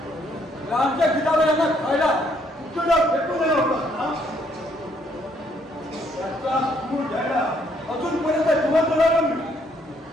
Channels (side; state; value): both; normal; correlation 0.69